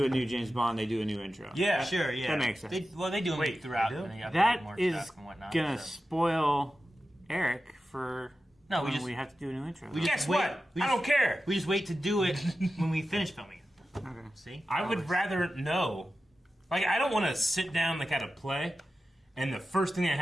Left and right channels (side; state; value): both; normal; correlation 0.93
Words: a new James Bond, they do a new intro. Yeah, sure. Yeah, that makes sense. They do them throughout. That is gonna spoil Eric for. No, we have to do a new intro. Guess what? I don't care. We just wait to do it when we finish filming it. Okay. See? I would rather know. Like, I don't want to sit down like at a play, and the first thing that